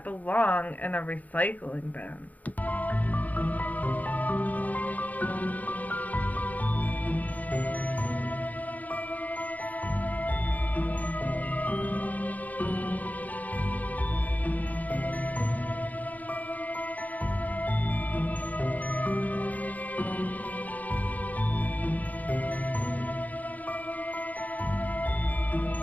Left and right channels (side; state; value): right; late; 0.078 ms